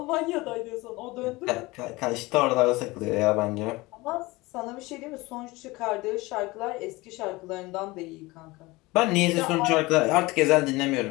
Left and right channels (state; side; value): quieter; right; 21.8 dB